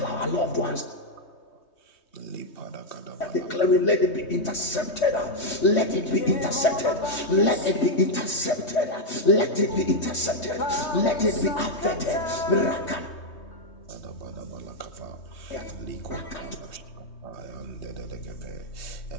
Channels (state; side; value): late; right; 3.2 ms